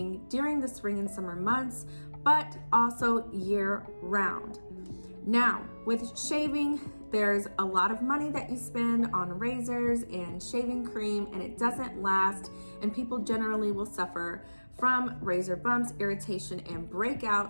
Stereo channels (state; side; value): inverted; both; correlation -1.00